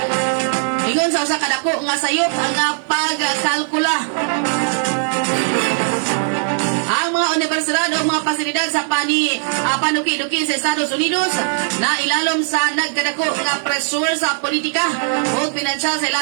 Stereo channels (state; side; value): silent; left; digital silence